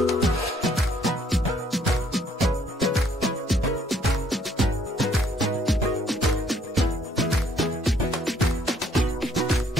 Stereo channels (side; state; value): both; normal; correlation 0.65